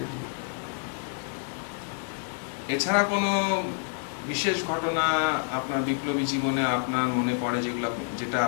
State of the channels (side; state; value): right; silent; 59 dB below the other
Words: এছাড়া কোনো বিশেষ ঘটনা আপনার বিপ্লবী জীবনে আপনার মনে পড়ে, যেটা